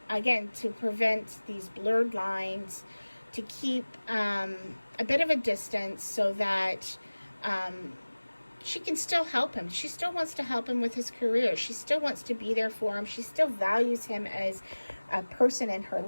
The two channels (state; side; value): inverted; both; correlation -1.00